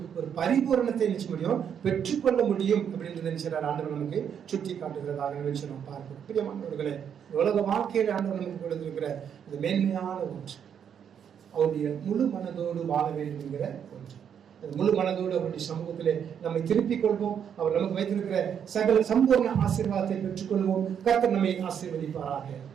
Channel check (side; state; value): left; quieter; 8.2 dB